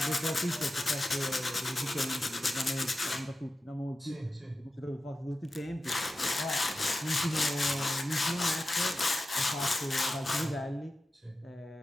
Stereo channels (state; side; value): normal; both; correlation 0.92